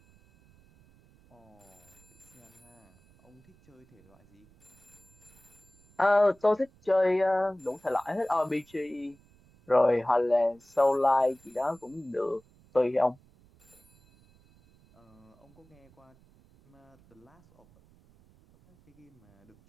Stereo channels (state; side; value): noise; right; rumble, 29 dB below the sound